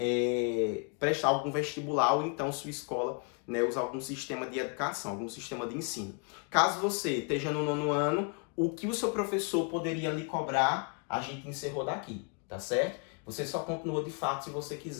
prestar algum vestibular ou então sua escola, né, usar algum sistema de educação, algum sistema de ensino. Caso você esteja no 9º ano, o que o seu professor poderia lhe cobrar, a gente encerrou daqui, tá certo? Você só continua de fato se você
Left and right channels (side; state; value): right; quieter; 37.6 dB